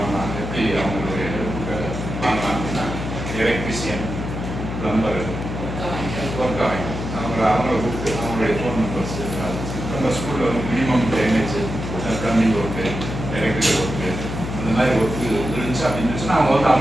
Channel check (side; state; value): left; noise; hum, 6 dB below the sound